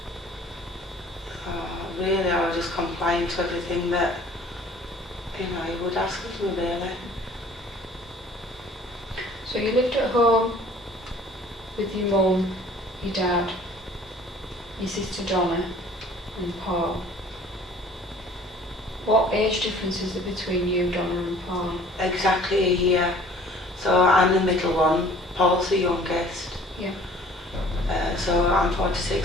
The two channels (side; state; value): both; normal; correlation 0.51